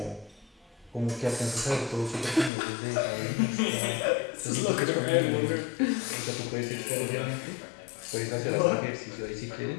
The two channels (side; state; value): right; drops out; at 2.5 s